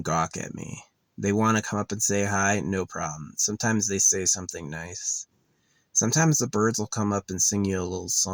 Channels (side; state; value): both; identical; correlation 1.00